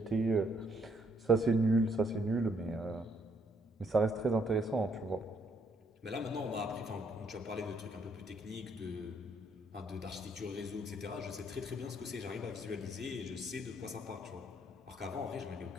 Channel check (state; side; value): normal; both; correlation 0.70